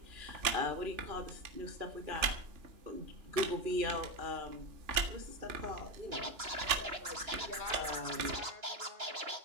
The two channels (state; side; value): late; left; 2.9 ms